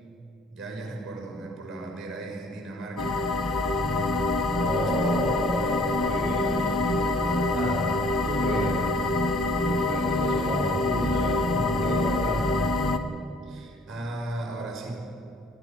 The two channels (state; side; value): normal; both; correlation 0.56